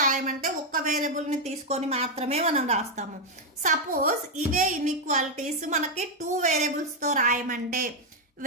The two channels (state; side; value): normal; both; correlation 0.02